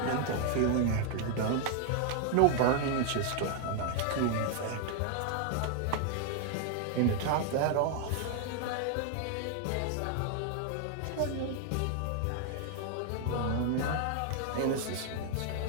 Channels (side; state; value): both; different; correlation 0.00